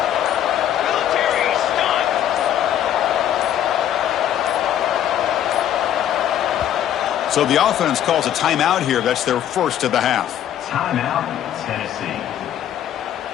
So the offense calls a timeout here. That's their first of the half. Timeout, Tennessee.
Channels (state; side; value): quieter; right; 10.8 dB